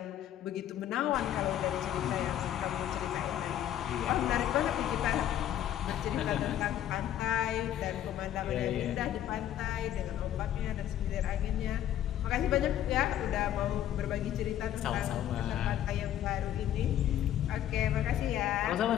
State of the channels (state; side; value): quieter; right; 11.5 dB